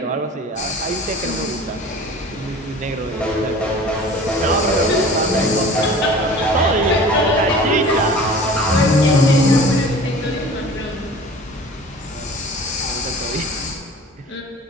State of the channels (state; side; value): normal; both; correlation 0.43